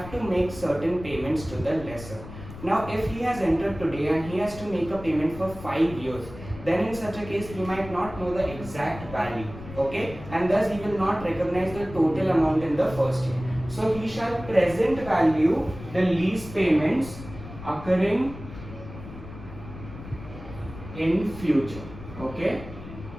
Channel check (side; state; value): left; noise; rumble, 14 dB below the sound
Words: to make certain payments to the lessor. Now if he has entered today and he has to make a payment for 5 years, then in such a case he might not know the exact value, okay, and thus he will not recognize the total amount in the first year. So he shall present value the lease payments occurring in future, okay.